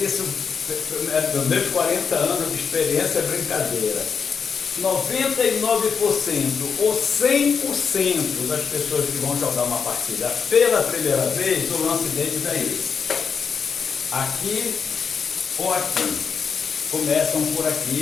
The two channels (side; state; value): right; quieter; 6.1 dB